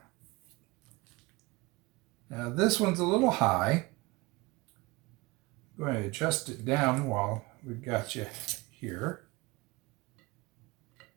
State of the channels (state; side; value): quieter; left; 22.9 dB